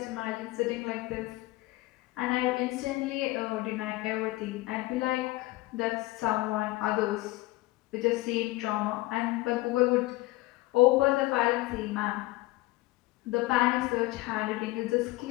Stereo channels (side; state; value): right; quieter; 19.8 dB